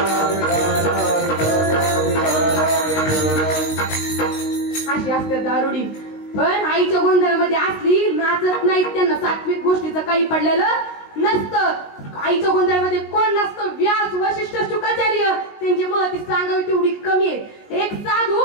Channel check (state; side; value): late; right; 19 ms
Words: अशी असते दारुडी. पण आईच्या गोंधळामध्ये असली नाचत नाहीत. त्यांना सात्विक गोष्टीचं काही पडलेलं नसतं. आईच्या गोंधळामध्ये कोण नसतं? व्यास, वशिष्ठ, शुकाचार्य. त्यांची महती सांगावी तेवढी कमी आहे. एक साधू